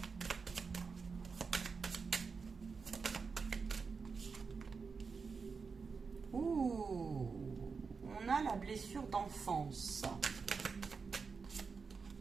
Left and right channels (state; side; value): quieter; left; 5.1 dB